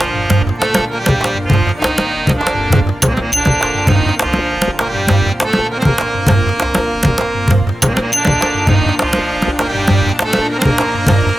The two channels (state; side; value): normal; both; correlation 0.93